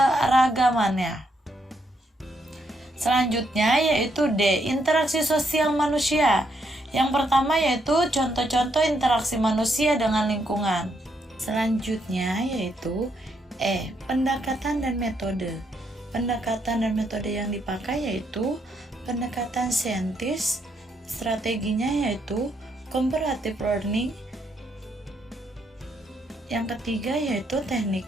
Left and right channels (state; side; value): normal; both; correlation 0.76